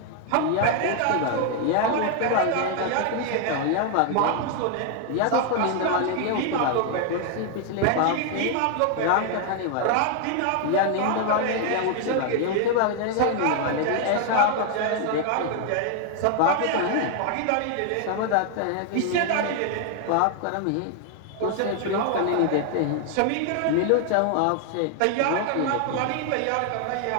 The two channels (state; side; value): different; both; correlation 0.00